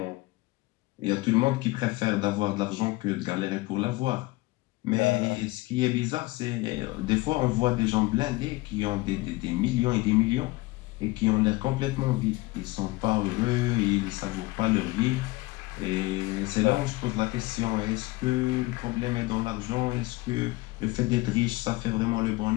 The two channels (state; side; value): quieter; right; 21.6 dB